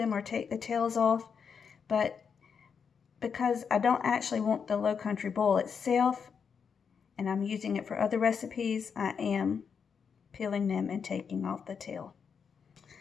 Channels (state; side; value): quieter; right; 6.5 dB